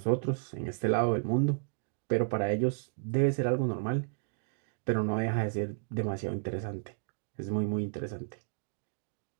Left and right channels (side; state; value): left; silent; digital silence